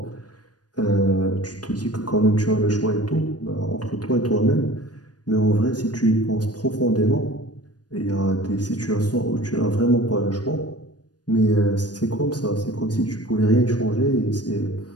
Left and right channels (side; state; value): right; late; 0.69 ms